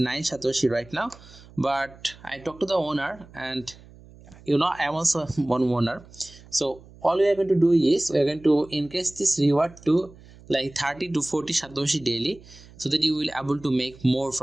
Satoshi right now. But I talked to the owner, and you know I am also one owner. So all we are going to do is we are going to increase this reward to like 30 to 40 Satoshi daily, so that you will able to make more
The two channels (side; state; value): right; noise; hum, 22 dB below the sound